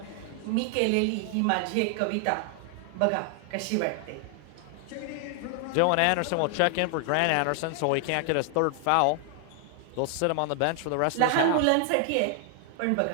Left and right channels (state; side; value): different; both; correlation 0.00